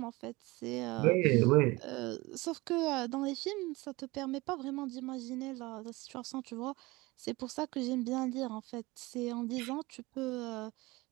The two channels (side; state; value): left; quieter; 22.7 dB